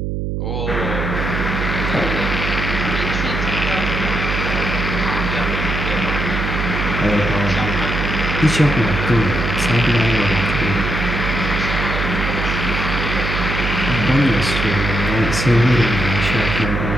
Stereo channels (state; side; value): noise; right; hum, 2 dB below the sound